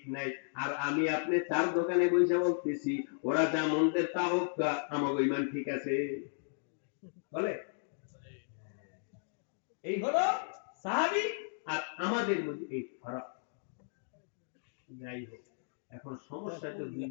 নাই, আর আমি আপনি চার দোকানে বসে বলতেছি ওরা যা মনদের তা হোক, আমার ঈমান ঠিক আছে বলে। এই হলো সাহাবী আর আমাদের মধ্যে এই ফারাক। যাই হোক, এখন সমস্যা তো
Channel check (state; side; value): silent; right; digital silence